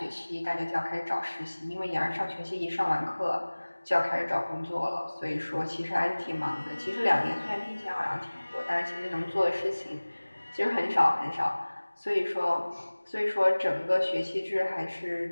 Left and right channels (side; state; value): both; inverted; correlation -1.00